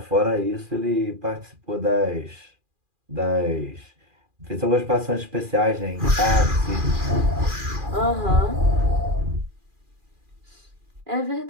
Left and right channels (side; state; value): left; late; 2.4 ms